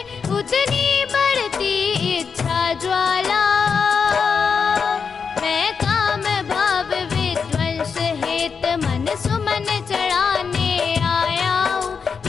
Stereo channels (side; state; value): right; quieter; 5.9 dB